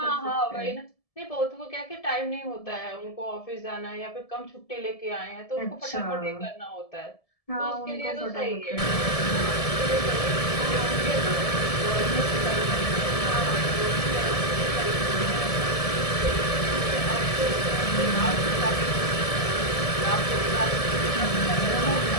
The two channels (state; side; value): late; right; 1.7 ms